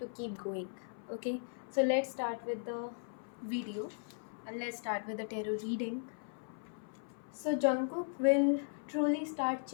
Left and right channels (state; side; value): silent; right; 53 dB below the other